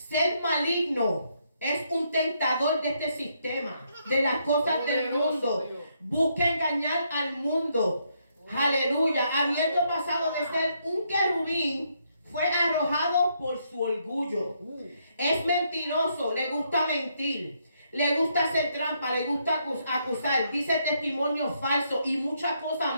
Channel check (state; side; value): inverted; both; correlation -0.75